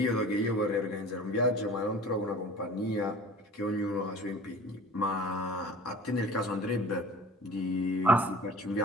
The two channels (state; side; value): normal; both; correlation 0.43